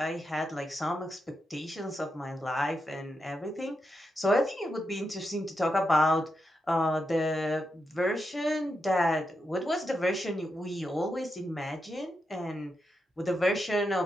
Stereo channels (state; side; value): normal; both; correlation 0.86